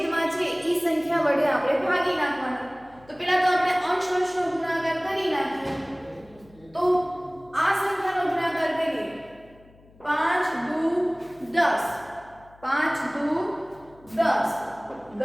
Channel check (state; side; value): noise; left; hum, 26 dB below the sound